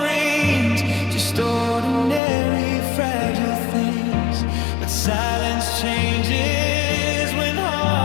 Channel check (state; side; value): drops out; right; at 2.2 s